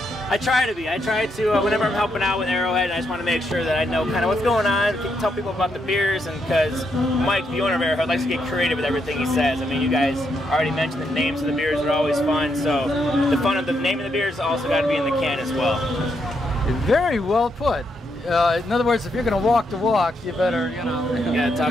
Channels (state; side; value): normal; both; correlation 0.79